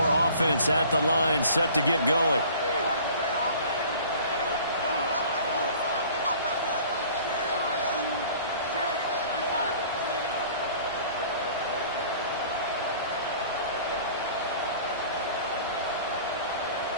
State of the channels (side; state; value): both; inverted; correlation -0.48